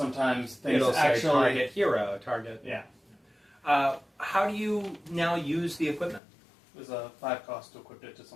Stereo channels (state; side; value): drops out; right; at 6.2 s